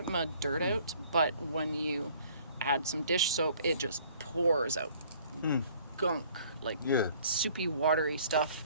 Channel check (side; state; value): both; inverted; correlation -0.56